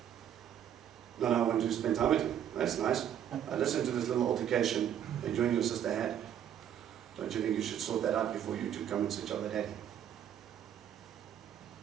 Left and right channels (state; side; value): quieter; left; 9.8 dB